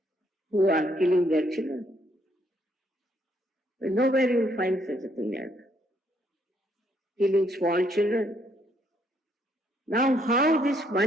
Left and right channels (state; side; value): normal; both; correlation 0.70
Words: who are killing their children. But nowhere you will find such a thing like that. Killing small children. Now how this